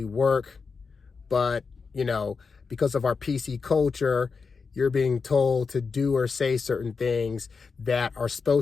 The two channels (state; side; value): quieter; right; 5.0 dB